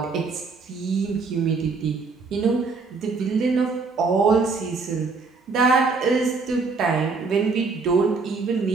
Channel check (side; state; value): left; quieter; 4.4 dB